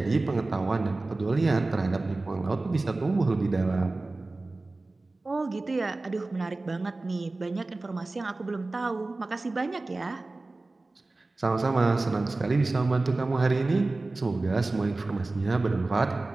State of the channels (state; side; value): quieter; left; 3.2 dB